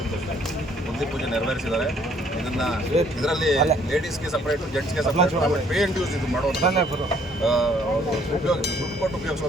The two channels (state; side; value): normal; both; correlation 0.63